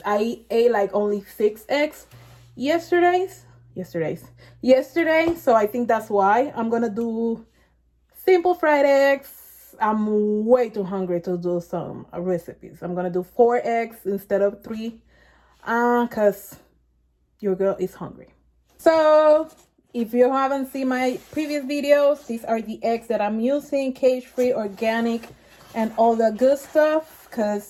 I ate like only 6 eggs yesterday. So I think that's why. I'm gonna do simple fried eggs. I'm way too hungry to do some recipes. I'm gonna do 4 eggs instead of 3, because your girl is hungry. So if you haven't seen my previous videos, these are the eggs that I'm using, cage-free, organic, and all the good stuff,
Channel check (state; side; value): identical; both; correlation 1.00